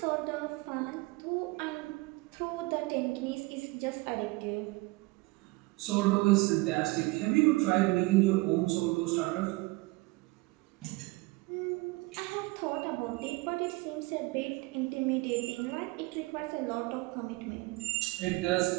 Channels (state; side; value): quieter; left; 22.9 dB